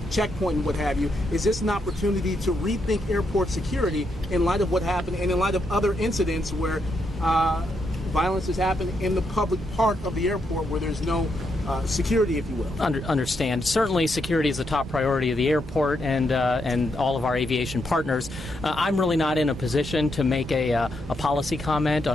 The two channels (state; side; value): normal; both; correlation 0.80